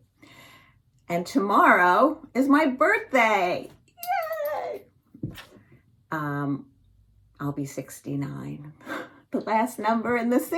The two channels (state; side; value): identical; both; correlation 1.00